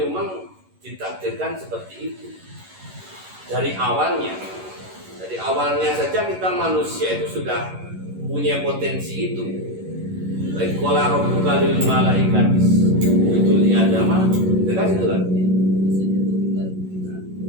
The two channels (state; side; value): late; left; 11 ms